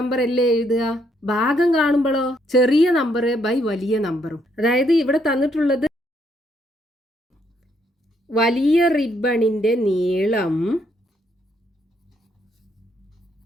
അല്ലേ എഴുതുക. ഭാഗം കാണുമ്പോഴോ ചെറിയ നമ്പർ ബൈ വലിയ നമ്പറും. അതായത് ഇവിടെ തന്നിട്ടുള്ളത് വലിയ റിബണിന്റെ നീളം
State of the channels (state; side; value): normal; both; correlation 0.72